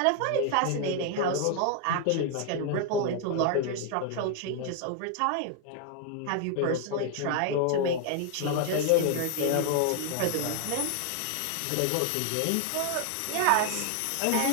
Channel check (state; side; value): different; both; correlation 0.00